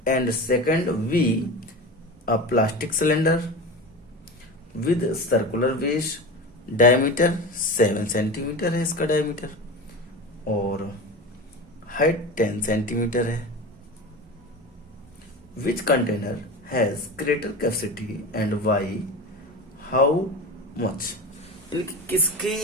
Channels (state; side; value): normal; both; correlation 0.28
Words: And second we, a plastic cylinder with circular base, diameter 7 centimetre है इसका डायमीटर और हाइट 10 सेंटीमीटर है। Which container has greater capacity and why, how much, इनकी किसकी